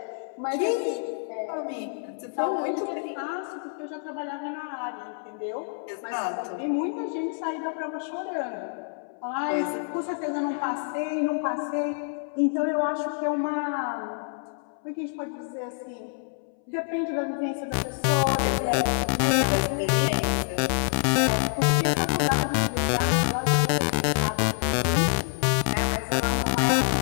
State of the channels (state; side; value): silent; right; 60 dB below the other